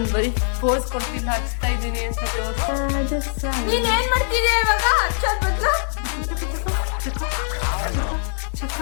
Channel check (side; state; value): right; silent; digital silence